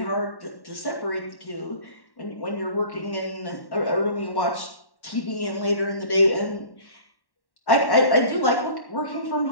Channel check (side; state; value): right; late; 1.1 ms